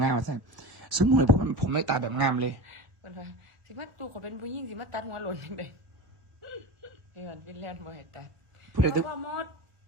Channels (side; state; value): left; late; 1.4 ms